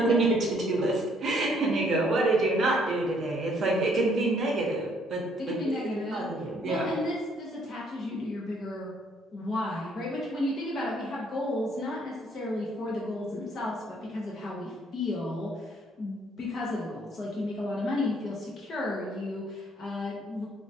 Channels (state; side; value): normal; both; correlation 0.66